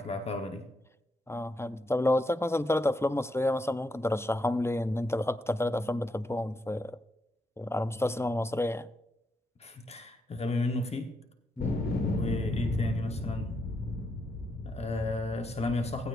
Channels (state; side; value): normal; both; correlation 0.81